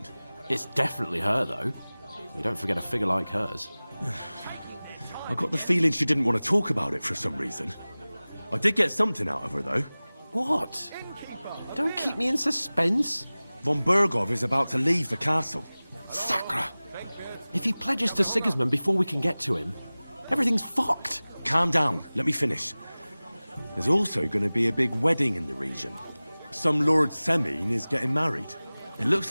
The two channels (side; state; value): both; inverted; correlation -0.99